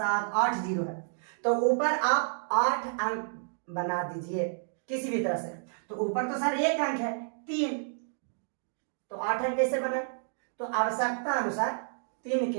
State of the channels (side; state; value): left; silent; digital silence